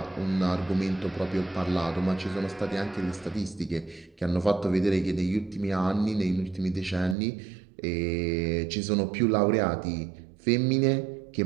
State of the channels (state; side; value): drops out; left; at 7.2 s